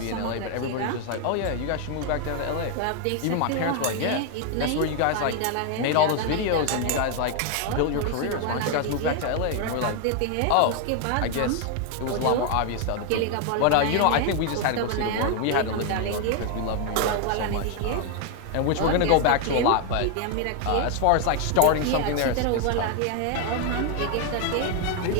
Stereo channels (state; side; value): different; both; correlation 0.00